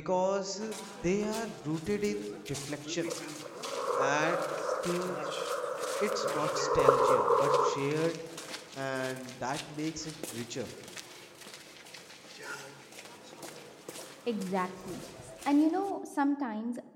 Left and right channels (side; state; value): both; identical; correlation 1.00